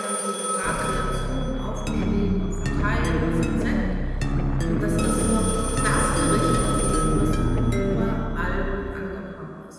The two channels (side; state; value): both; identical; correlation 1.00